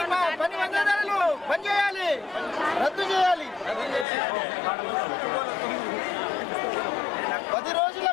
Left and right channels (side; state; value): right; drops out; at 4.0 s